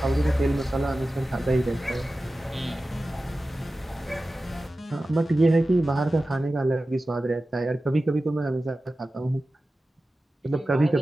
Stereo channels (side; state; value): both; normal; correlation 0.95